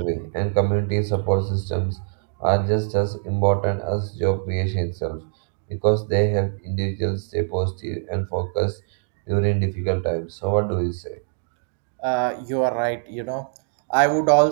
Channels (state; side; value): silent; left; digital silence